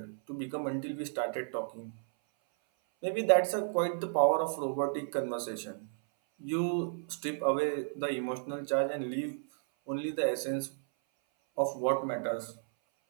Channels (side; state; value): left; silent; 56 dB below the other